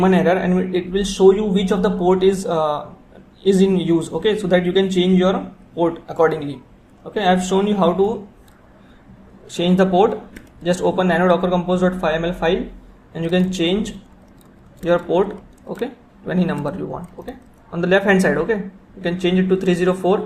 error, and it will show you which of the port is in use. Okay, so that you can change your port accordingly. Okay, I have shown you how to change the port. Just open nano docker compose.yml file and you can change your port, okay, to any number you want. Okay, on the left hand side, okay, you can change it to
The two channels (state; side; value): identical; both; correlation 1.00